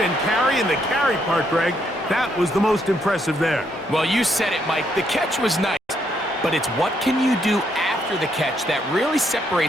carry, and the carry part, Greg, that was the most impressive there. Well, you said it, Mike. The catch was nice, but it's what can you do after the catch that really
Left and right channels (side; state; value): both; normal; correlation 0.74